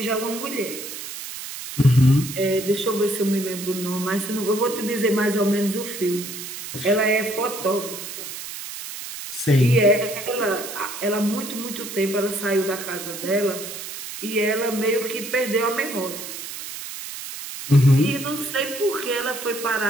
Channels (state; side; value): noise; right; hiss, 9 dB below the sound